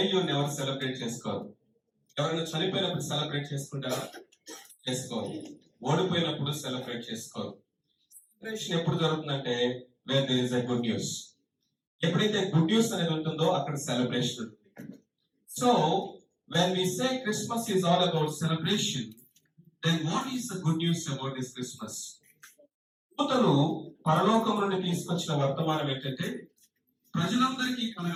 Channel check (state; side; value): identical; both; correlation 1.00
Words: ఎవరు సెలబ్రేట్ చేసుకోరు. ఎవరైనా చనిపోయినప్పుడు సెలబ్రేట్ చేసుకుంటారా? చేసుకోరు. ఓడిపోయినప్పుడు సెలబ్రేట్ చేసుకోరు. సెలబ్రేషన్ ఎప్పుడు జరుగుతుందంటే where there is a good news. ఎప్పుడైతే గుడ్ న్యూస్ అనేది ఉంటుందో అక్కడ సెలబ్రేషన్ ఉంటుంది. So when we say Christmas is all about celebration, then what is the good news about this Christmas? దూతలు పరలోకం నుండి తీసుకొచ్చిన వర్తమానం ఏంటంటే ప్రజలందరికీ